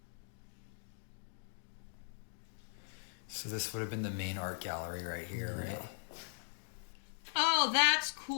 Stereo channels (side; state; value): right; silent; digital silence